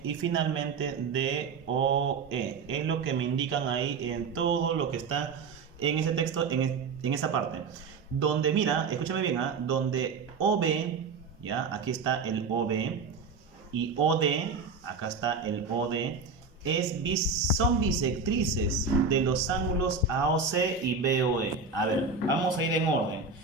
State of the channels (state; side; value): quieter; left; 4.8 dB